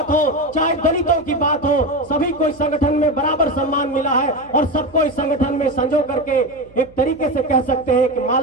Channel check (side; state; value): right; noise; hum, 26 dB below the sound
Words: हो, चाहे दलितों की बात हो, सभी को इस संगठन में बराबर सम्मान मिला है और सबको इस संगठन में संजो करके एक तरीके से कह सकते हैं कि